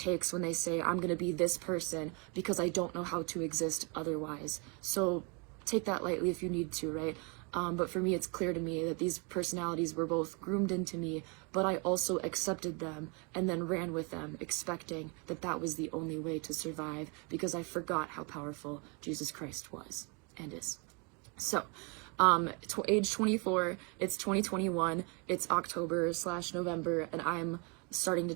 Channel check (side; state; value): left; quieter; 33.0 dB